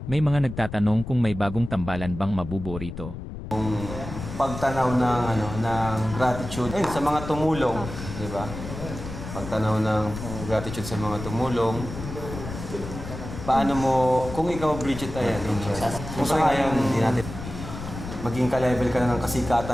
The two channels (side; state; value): left; noise; rumble, 9 dB below the sound